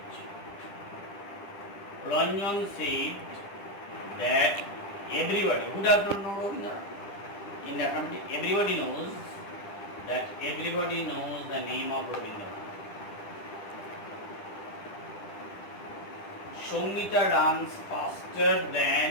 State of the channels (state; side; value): late; right; 10 ms